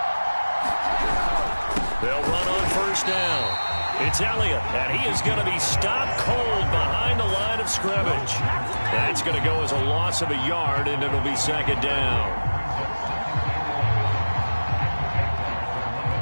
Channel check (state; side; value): inverted; both; correlation -1.00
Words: They'll run on 1st down. It's Elliott, and he is going to be stopped cold behind the line of scrimmage. That's going to go as a loss of a yard, and it'll be 2nd down.